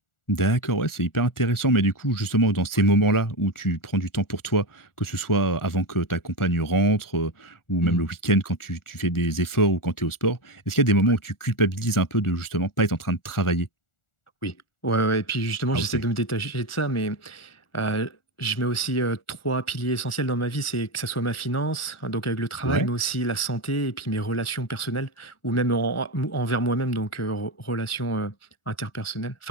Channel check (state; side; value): late; right; 1.4 ms